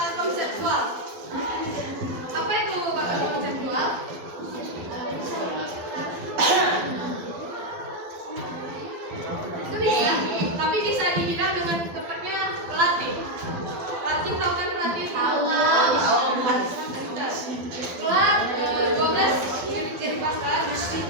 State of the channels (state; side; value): late; left; 12 ms